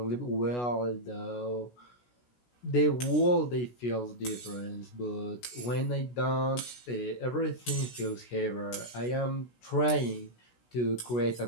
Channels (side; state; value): right; late; 16 ms